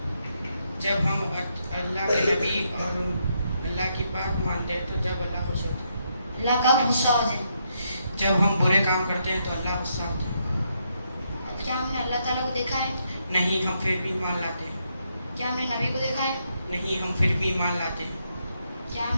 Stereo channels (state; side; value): inverted; both; correlation -0.78